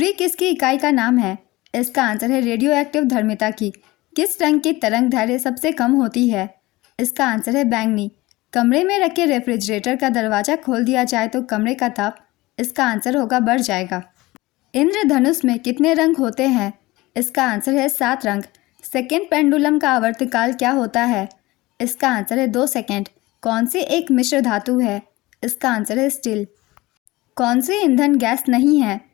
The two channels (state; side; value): quieter; right; 20.1 dB